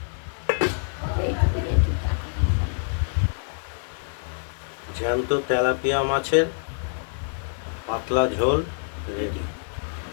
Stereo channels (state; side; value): silent; right; 61 dB below the other